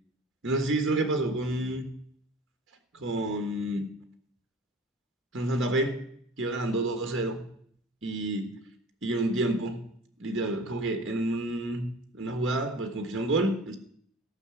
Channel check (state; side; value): normal; both; correlation 0.42